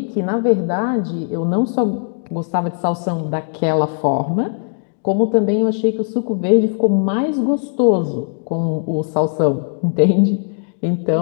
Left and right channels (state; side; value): silent; right; 67 dB below the other